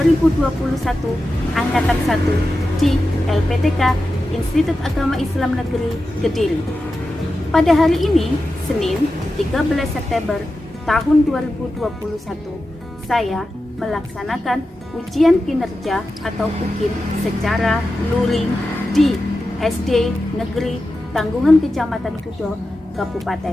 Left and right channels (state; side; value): normal; both; correlation 0.92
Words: Angkatan 1 di LPTK Institut Agama Islam Negeri Kediri. Pada hari ini, Senin 13 September tahun 2021, saya melaksanakan ujian kinerja atau UKIN secara luring di SD Negeri Tanggungan Kecamatan Kudo,